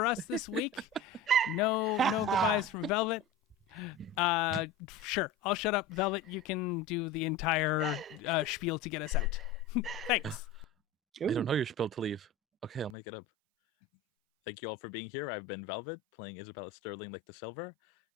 us this week. No goodbyes from Velvet. Sure, I'll shut up. Velvet, you can do the entire spiel to get us out. Thanks. I don't know your spiel to leave. Okay, I'll make it up. Thank you all for being here. I've been Velvet, playing Isabella Sterling like the Silver.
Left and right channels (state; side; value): drops out; right; at 13.0 s